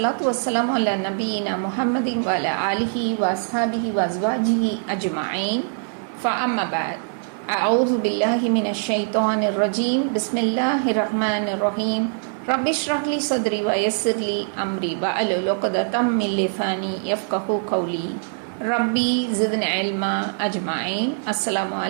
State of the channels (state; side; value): silent; left; 64 dB below the other